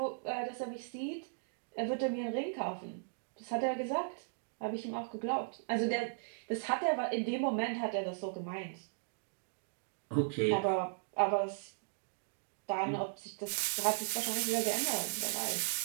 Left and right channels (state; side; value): silent; left; digital silence